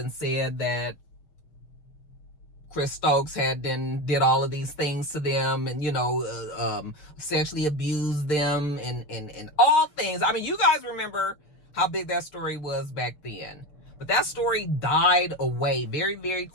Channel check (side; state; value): right; late; 6.5 ms